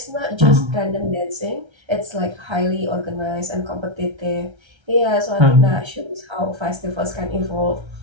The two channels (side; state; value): left; late; 1.3 ms